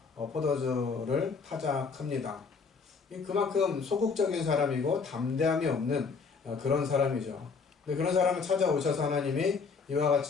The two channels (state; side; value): quieter; right; 5.1 dB